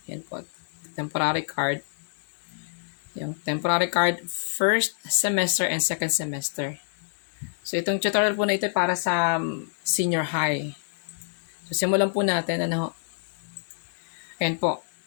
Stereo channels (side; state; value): right; silent; digital silence